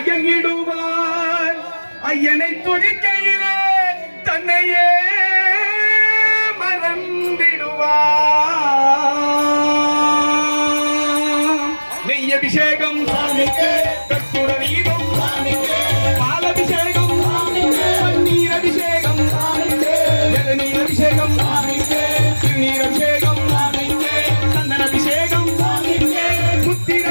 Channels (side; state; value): both; inverted; correlation -1.00